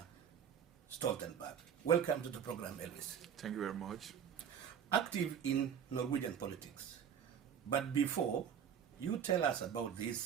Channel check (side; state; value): left; quieter; 8.2 dB